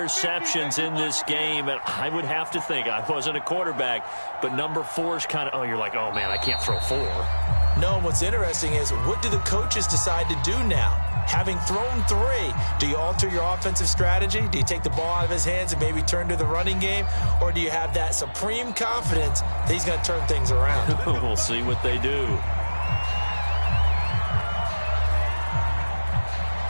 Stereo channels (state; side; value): inverted; both; correlation -1.00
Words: in this game. And I would have to think, I wasn't a quarterback, but number 4 is kind of, you're like, oh, man, I can't throw 4. No, what's interesting is, what do the coaches decide to do now? Having thrown 3, do you alter your offensive strategy? Do you take the ball out of his hands and maybe turn to the running game? Or do you have that supreme confidence that he's going to turn things around? We'll see what they do.